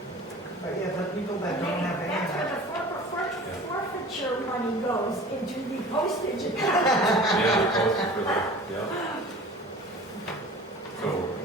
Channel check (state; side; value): normal; both; correlation 0.41